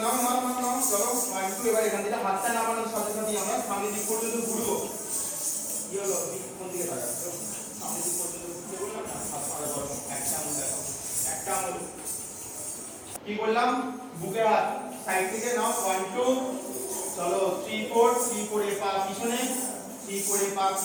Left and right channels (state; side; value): identical; both; correlation 1.00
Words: নাও নাও নাও নাও, চলো 1 2। এবার এখান থেকে হাতটা নামানোর সাথে সাথে আমরা সামনে দিক পর্যন্ত ঘুরবো। কি হলো? কোন দিকে তাকাচ্ছ? সামনে দিক পর্যন্ত ঘুরতে বললাম না, হাত পা ধরো, একটা আঙুল দেখো, একটা আঙুল। কি বললাম? বুকে হাত সাইড থেকে নাও 1 2, চলো 3 4 3 4 এ পা পিছনে, 3 4 এ পা